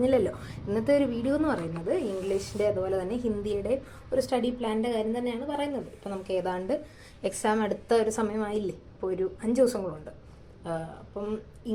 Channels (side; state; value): both; identical; correlation 1.00